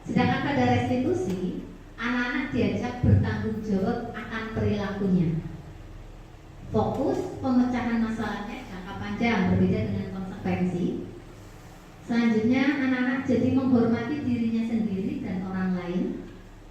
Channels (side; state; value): both; identical; correlation 1.00